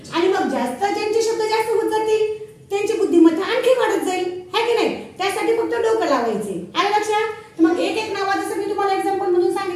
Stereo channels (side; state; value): both; identical; correlation 1.00